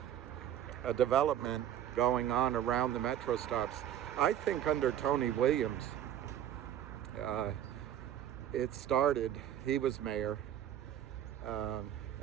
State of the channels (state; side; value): quieter; left; 10.8 dB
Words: development going on around the metro stops. I think under Tony Williams, it started. He was mayor,